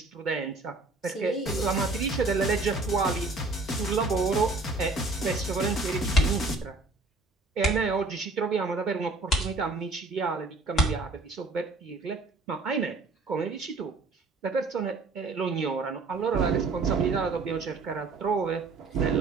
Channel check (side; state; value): left; quieter; 3.3 dB